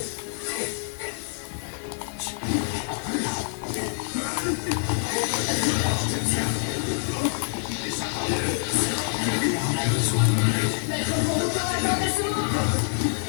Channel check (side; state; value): right; silent; digital silence